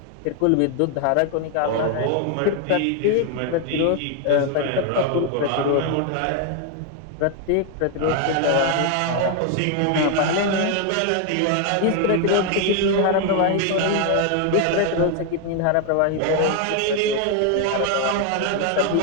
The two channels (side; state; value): both; different; correlation 0.01